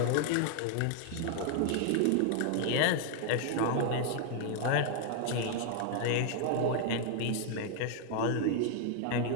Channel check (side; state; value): both; different; correlation 0.00